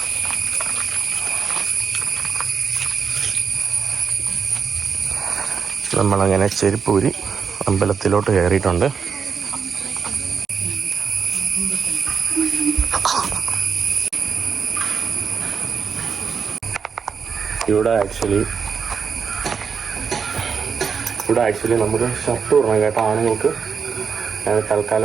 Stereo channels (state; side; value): quieter; left; 6.1 dB